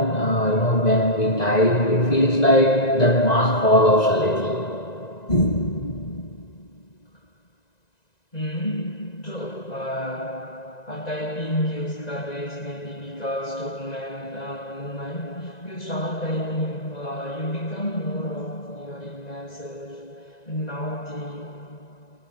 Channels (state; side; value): late; right; 1.9 ms